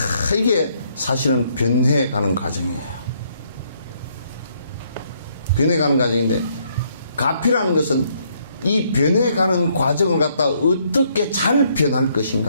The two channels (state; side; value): inverted; both; correlation -0.70